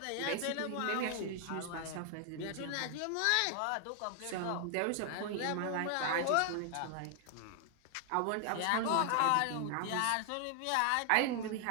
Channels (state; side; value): different; both; correlation 0.00